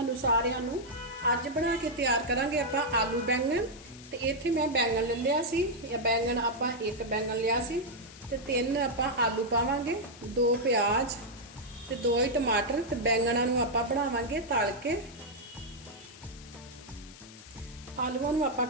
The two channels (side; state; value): left; noise; hiss, 19 dB below the sound